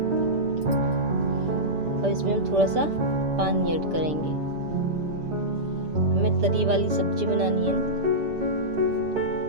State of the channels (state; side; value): late; left; 6.9 ms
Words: और इसमें हम थोड़ा सा पानी ऐड करेंगे। हमें तरी वाली सब्जी बनानी है।